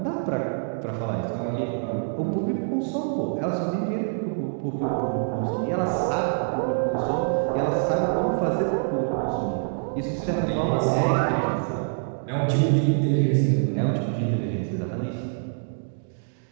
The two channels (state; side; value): silent; left; digital silence